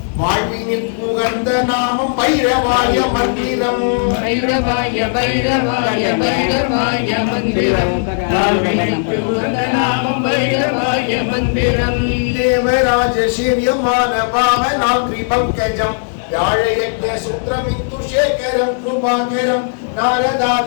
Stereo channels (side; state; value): right; silent; digital silence